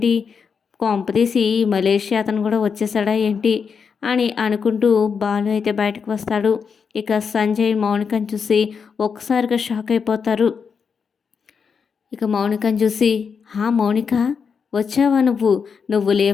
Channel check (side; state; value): right; quieter; 6.1 dB